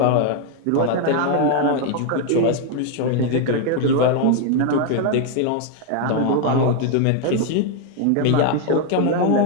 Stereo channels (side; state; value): both; different; correlation 0.00